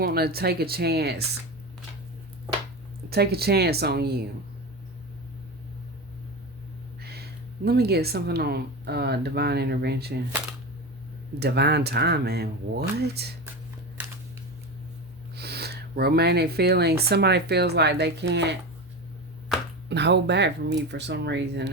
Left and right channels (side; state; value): both; normal; correlation 0.23